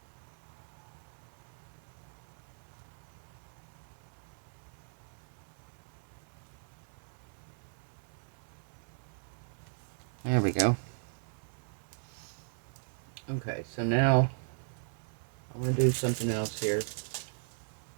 There we go. Okay, so now I'm going to do something else here.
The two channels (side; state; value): left; silent; 53 dB below the other